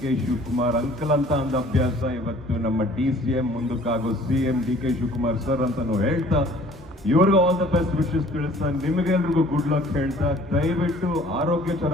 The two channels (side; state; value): both; normal; correlation 0.53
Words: ಶಿವಕುಮಾರ್ ಅಂಕಲ್ ಅಂತ ಒಂದು ಅಭ್ಯಾಸ. ಇವತ್ತು ನಮ್ಮ DCM ಮುಂದಕ್ಕಾಗೋ CM DK Shivakumar sir ಅಂತಾನು ಹೇಳ್ತಾ, ಇವ್ರಿಗೂ ಆಲ್ ದ ಬೆಸ್ಟ್ ವಿಶಸ್ ತಿಳಿಸ್ತಾ, ನಿಮಗೆಲ್ರಿಗೂ ಗುಡ್ ಲಕ್ ಹೇಳ್ತಾ, ದಯವಿಟ್ಟು ಆರೋಗ್ಯ